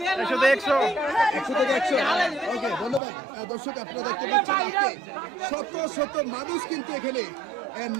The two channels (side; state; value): left; drops out; at 3.0 s